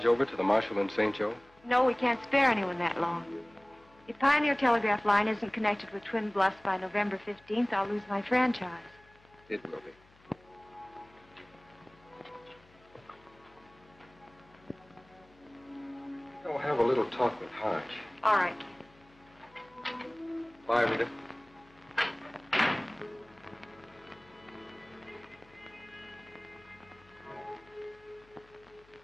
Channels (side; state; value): left; noise; hum, 28 dB below the sound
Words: over to the marshal in St. Joe? No, we can't spare anyone that long. If Pioneer Telegraph Line isn't connected with Twin Bluffs by November 15th, I'll lose my franchise. It will be. I'll have a little talk with Hodge. All right. Bye, Rita.